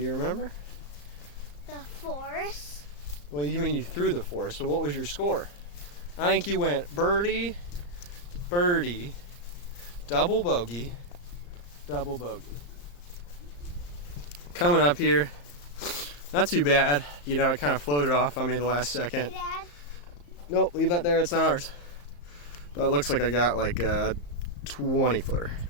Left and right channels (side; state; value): right; late; 34 ms